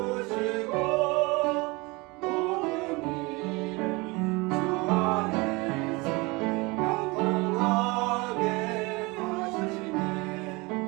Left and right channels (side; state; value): left; quieter; 25.1 dB